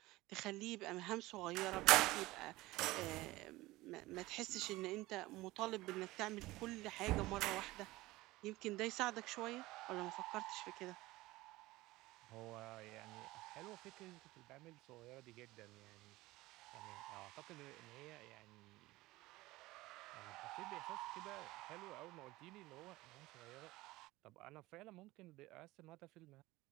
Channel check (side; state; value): left; quieter; 19.1 dB